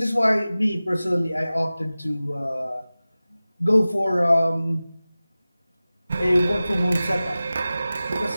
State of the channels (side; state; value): both; inverted; correlation -0.97